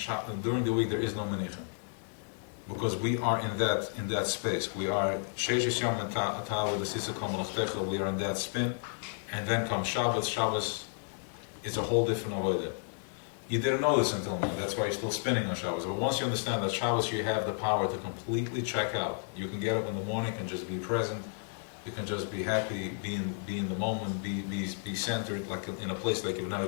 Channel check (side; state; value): right; silent; 56 dB below the other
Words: During the week, there is no menicha. Because we are in that space. We are Sheish Yom Atav the Sisa Kol Malachtecha. We are in that spin. And then comes Shabbos. Shabbos is a whole different avodah. You didn't know this until now. That's why you're still spinning on Shabbos. But once you understand that Shabbos, you have the power to completely check out. You can get up in the morning and just be present. You can just be happy, be in the moment, be centered, like in a place like you've never